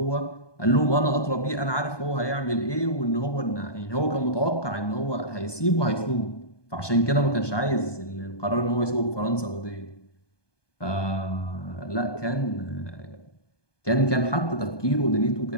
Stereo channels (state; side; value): late; right; 1.2 ms